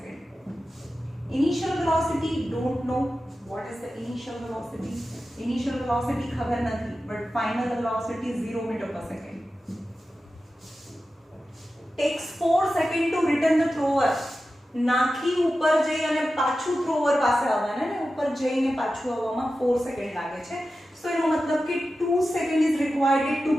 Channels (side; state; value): both; normal; correlation 0.93